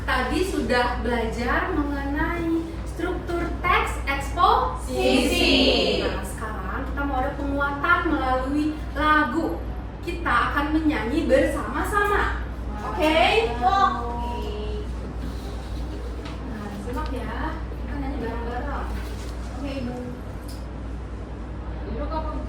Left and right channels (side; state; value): both; identical; correlation 1.00